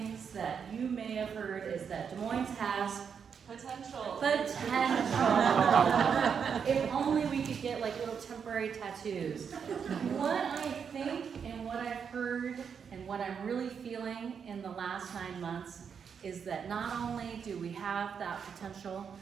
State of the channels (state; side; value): quieter; left; 6.8 dB